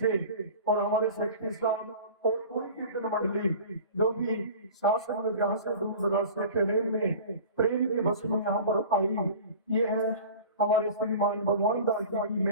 और हमारे सेक्रेटरी साहब और पूरी कीर्तन मंडली जो भी शासन विग्रह से दूर दराज से ट्रेन में प्रेम के बस में यहाँ पर आई, ये है हमारे श्रीमान भगवान दास जी की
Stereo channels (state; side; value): inverted; both; correlation -0.39